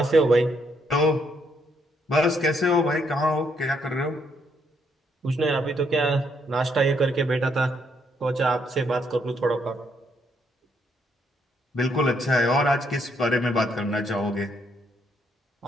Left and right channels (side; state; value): both; normal; correlation 0.73